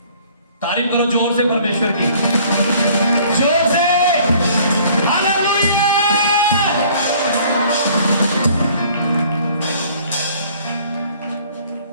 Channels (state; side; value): inverted; both; correlation -0.56